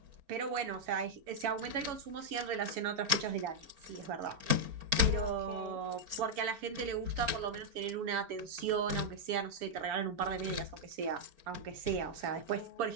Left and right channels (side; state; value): left; late; 4.4 ms